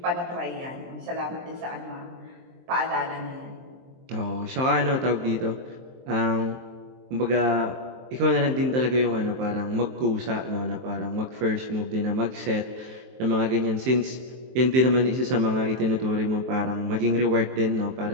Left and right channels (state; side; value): late; left; 23 ms